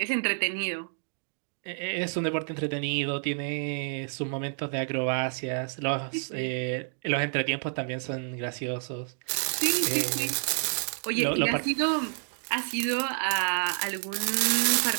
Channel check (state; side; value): silent; left; digital silence